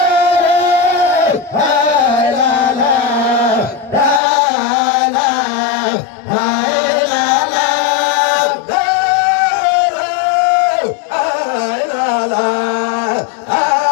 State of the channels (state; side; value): drops out; right; at 4.2 s